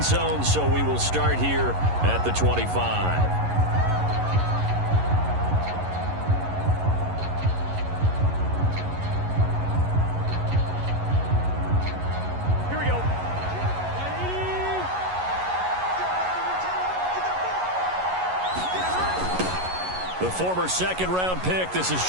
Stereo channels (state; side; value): late; left; 11 ms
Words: zone, so we will start here at the 25. The former second-round pick, this is